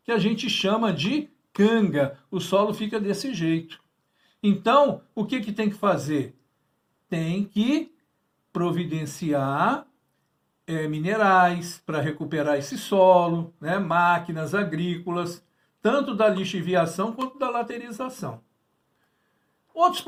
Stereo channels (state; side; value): identical; both; correlation 1.00